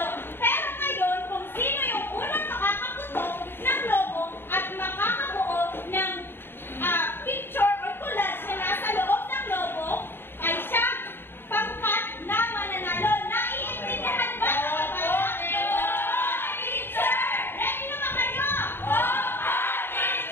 Pero ngayon, kung sino yung unang makakaputok ng logo at makakabuo ng picture or collage na nasa loob ng logo ay siyang pangkat na mananalo. Naiintindihan ba? Teacher! Ready na ba kayo? Oo,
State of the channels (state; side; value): late; right; 0.11 ms